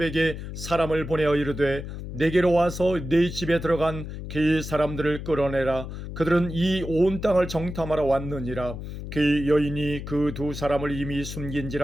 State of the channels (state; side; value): noise; left; hum, 8 dB below the sound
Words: 사람을 보내어 이르되 내게로 와서 네 집에 들어간 그 사람들을 끌어내라. 그들은 이 온 땅을 정탐하러 왔느니라. 그 여인이 그 두 사람을 이미